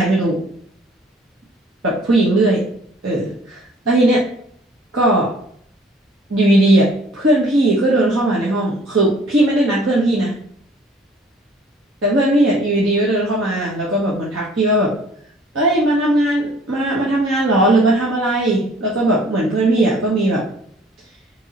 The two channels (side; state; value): both; normal; correlation 0.55